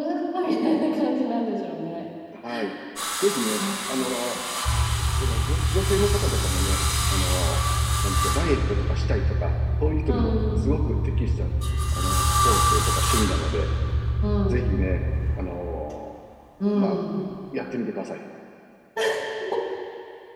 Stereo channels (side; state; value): both; identical; correlation 1.00